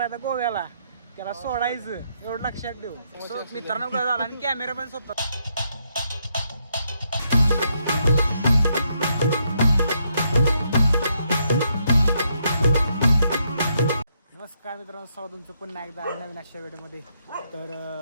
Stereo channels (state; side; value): inverted; both; correlation -0.76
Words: आता गोव्याला, त्याला सोडायचं एवढं लक्षात ठेवू. मित्रांनो काय झाला आणि कॅमेरा पण स्वतः. नमस्कार मित्रांनो, स्वागत तुमचं पुन्हा एकदा नवीन अशा व्हिडिओमध्ये. तर